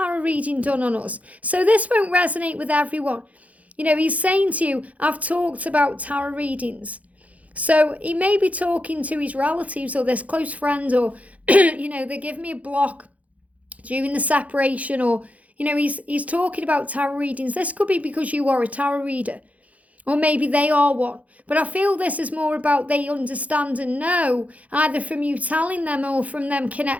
reading done on us. So this won't resonate with everyone. He's saying to you, I've talked about tarot readings. So he may be talking to his relatives or this close friend, or, they give me a block during the separation, or, he's talking about tarot readings. This could be because you are a tarot reader, or maybe they are one. But I feel this is more about they understand and know, either from you telling them or from them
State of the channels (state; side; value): late; left; 0.069 ms